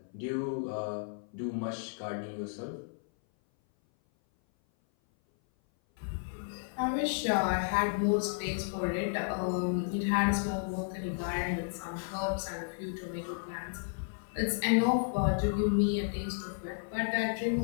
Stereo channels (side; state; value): right; silent; 56 dB below the other